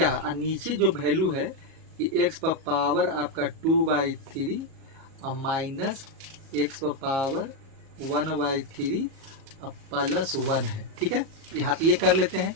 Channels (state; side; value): late; left; 37 ms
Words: और नीचे जो वैल्यू है कि x पर पावर आपका 2/3 और माइनस x पर पावर 1/3 और +1 है, ठीक है। यहाँ तो ये कर लेते हैं,